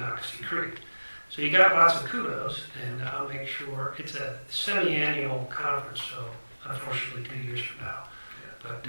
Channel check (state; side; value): inverted; both; correlation -1.00